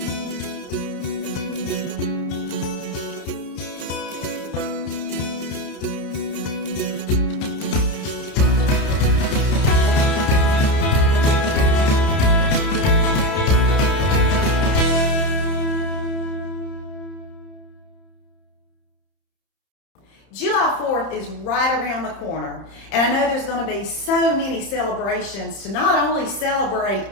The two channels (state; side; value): late; right; 30 ms